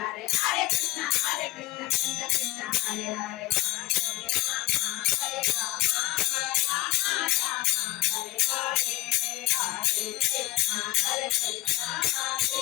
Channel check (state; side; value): quieter; right; 18.4 dB